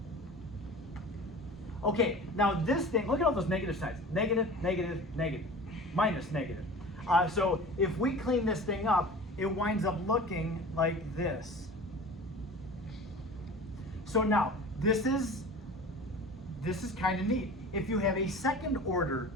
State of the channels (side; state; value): both; normal; correlation 0.38